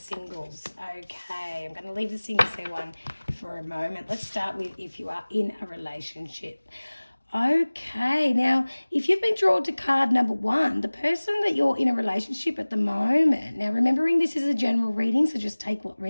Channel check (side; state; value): both; inverted; correlation -1.00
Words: Okay, I'm going to leave the singles there one for a moment. Let's start with if you are in a relationship. Okay, now if you've been drawn to card number one, the person that you're in a relationship at the moment, now remembering this is a general reading, so just take what